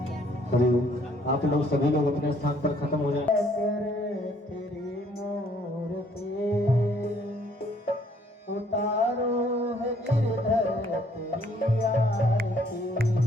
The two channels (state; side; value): normal; both; correlation 0.64